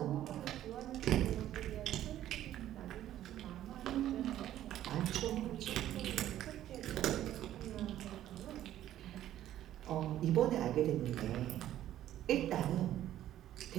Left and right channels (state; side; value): quieter; left; 12.5 dB